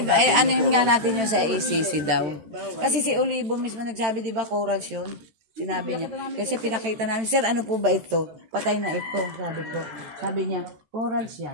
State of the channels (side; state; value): left; late; 14 ms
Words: ay, ano yun nga natin yun sa ACC daw. Kasi si Olivo mismo nagsabi, di ba, corals yun? Sinabi niya. Kasi pinakita namin, sir, ano po ba ito? Patay na ito, sabi ko. Sabi niya, corals